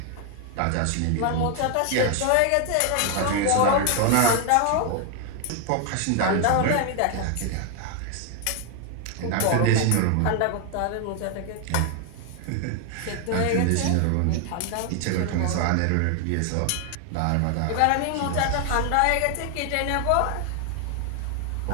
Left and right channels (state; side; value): different; both; correlation 0.00